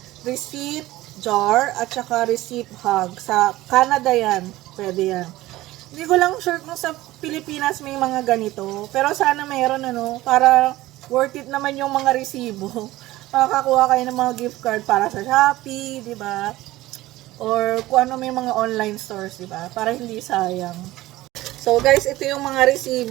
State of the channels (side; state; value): left; quieter; 17.2 dB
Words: Receipt Jar at saka Receipt Hug. Sa Canada yan. Pwede yan. Hindi ko lang sure kung sa Pilipinas may mga ganito. Pero sana mayroon para worth it naman yung mga resibo. Makakakuha kayo ng mga gift card para sa Shopee, di ba? Or kung ano may mga online stores, diba? Para hindi sayang. So, guys, ito yung mga